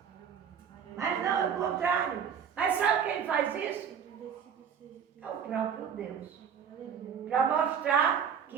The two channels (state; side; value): quieter; left; 7.4 dB